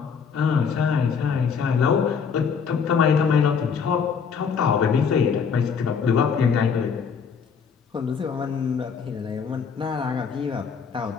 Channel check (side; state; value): right; quieter; 6.3 dB